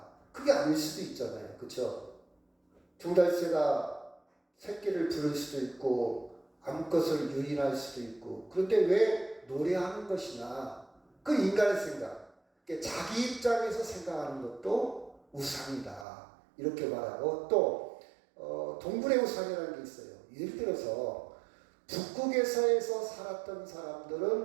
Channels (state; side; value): drops out; left; at 16.1 s